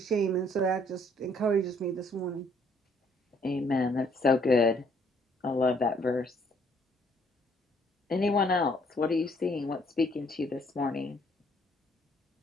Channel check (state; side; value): normal; both; correlation 0.64